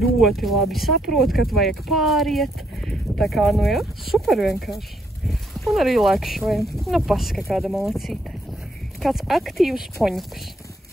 labi saprot, kad vajag pāriet. Tā kā, super vienkārši. Un arī lēkšojam. Paska kāda malacīte. Kāds aktīvs poņuks.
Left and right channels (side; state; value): both; normal; correlation 0.73